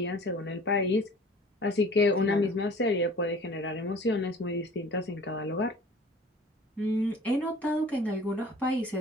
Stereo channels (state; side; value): normal; both; correlation 0.46